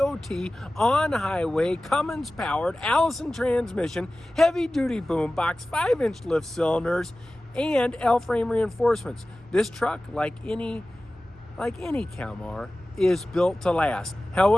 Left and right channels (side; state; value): both; normal; correlation 0.96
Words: on-highway Cummins-powered Allison transmission, heavy-duty boom box, 5-inch lift cylinders, and L-frame reinforcements. This truck, like any Kalmar, is built to last.